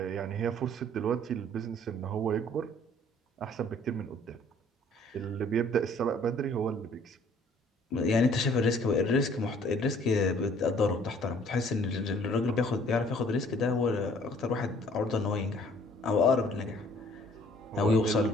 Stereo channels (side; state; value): both; normal; correlation 0.57